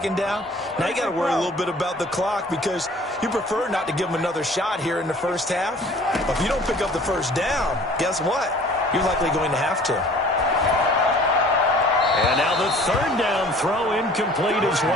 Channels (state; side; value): normal; both; correlation 0.50